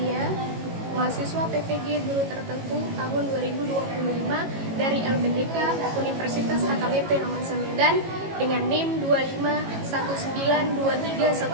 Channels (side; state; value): left; late; 18 ms